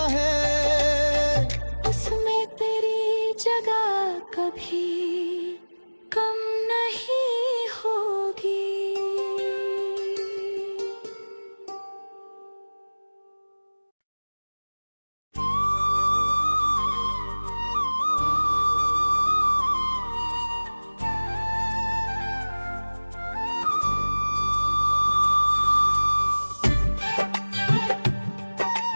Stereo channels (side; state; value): both; inverted; correlation -1.00